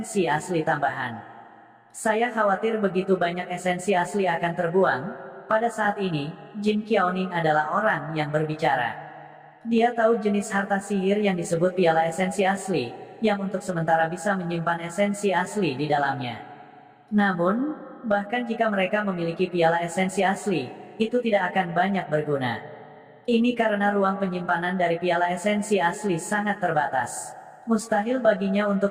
asli tambahan. Saya khawatir begitu banyak esensi asli akan terbuang. Pada saat ini, Jin Qiaoning adalah orang yang berbicara. Dia tahu jenis harta sihir yang disebut piala esensi asli, yang untuk sementara bisa menyimpan esensi asli di dalamnya. Namun, bahkan jika mereka memiliki piala esensi asli, itu tidak akan banyak berguna. Ini karena ruang penyimpanan dari piala esensi asli sangat terbatas. Mustahil baginya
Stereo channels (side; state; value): both; identical; correlation 1.00